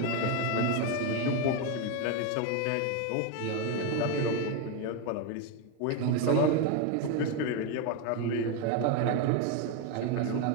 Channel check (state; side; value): different; both; correlation 0.02